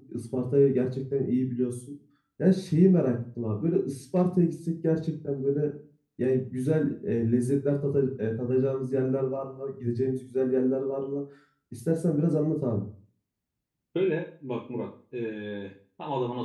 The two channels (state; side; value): identical; both; correlation 1.00